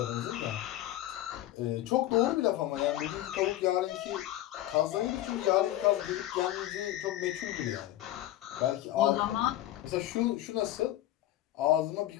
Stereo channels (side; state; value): right; quieter; 14.4 dB